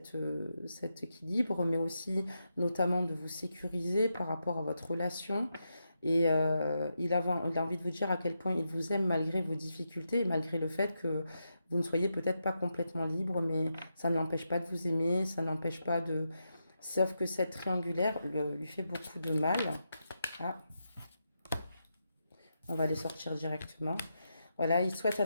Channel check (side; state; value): both; inverted; correlation -0.85